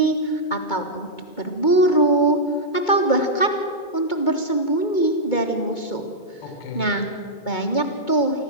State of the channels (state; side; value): late; right; 2.2 ms